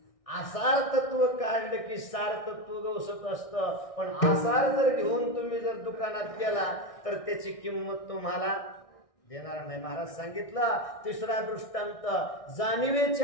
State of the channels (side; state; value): right; late; 1.6 ms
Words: आसार तत्व काढलं की सार तत्व गवसत असतं. पण आसार जर घेऊन तुम्ही जर दुकानात गेला तर त्याची किंमत तुम्हाला देणार नाही. महाराज सांगितलं, तिसरा दृष्टांत,